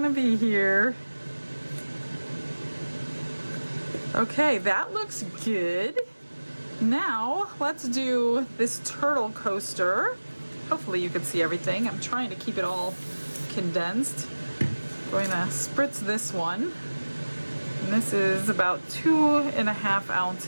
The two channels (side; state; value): both; inverted; correlation -1.00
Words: be here. Okay, that looks good. Now, let's do this turtle coaster. Hopefully you can see everything. I'm trying to keep it all condensed. Going to spritz this one. And this is about 2.5